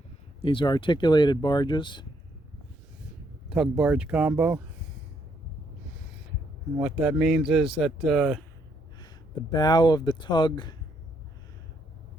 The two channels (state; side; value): normal; both; correlation 0.73